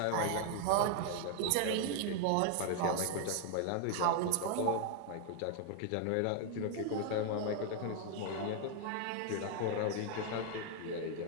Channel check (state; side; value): different; both; correlation 0.00